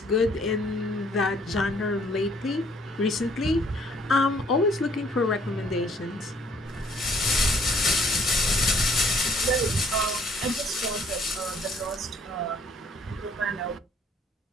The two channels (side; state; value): both; normal; correlation 0.61